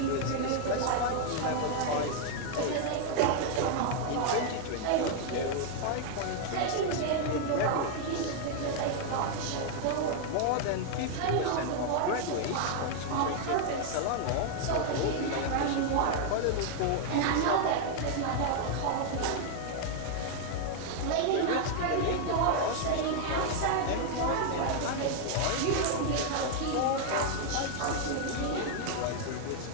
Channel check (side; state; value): both; different; correlation 0.00